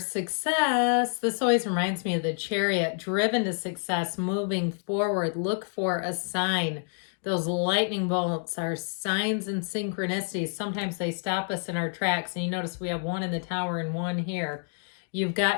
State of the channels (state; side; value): silent; right; 59 dB below the other